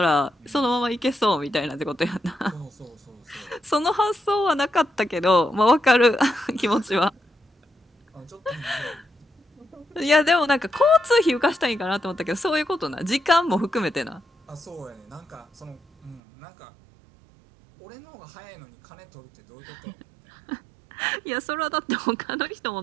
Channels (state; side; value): drops out; left; at 16.2 s